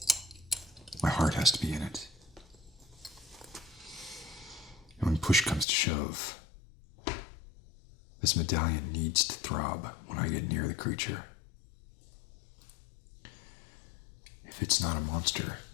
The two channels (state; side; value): drops out; right; at 5.7 s